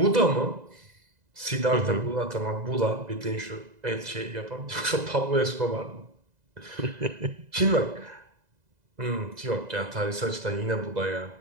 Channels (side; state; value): left; late; 2.0 ms